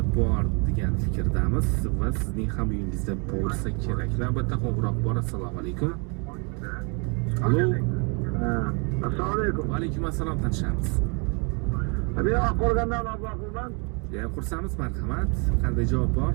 bor degan fikrdamiz va sizning ham uyingizda bo'lsa kerak. Navbatda qo'ng'iroq bor. Assalomu alaykum. Allo. Assalomu alaykum. Va alaykum assalom, tanishamiz. Men Oqqo'rg'ondan Abdullahman. Jam xursandmiz, marhamat. Qanday javob bor?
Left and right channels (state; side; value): quieter; left; 34.9 dB